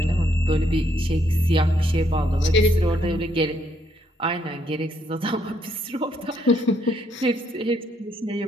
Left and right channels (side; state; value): both; normal; correlation 0.73